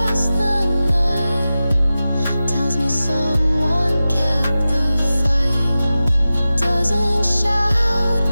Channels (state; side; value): inverted; both; correlation -0.95